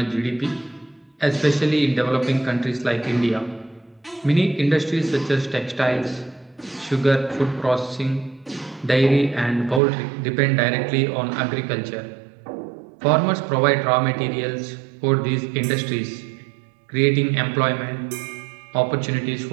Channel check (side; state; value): left; drops out; at 9.8 s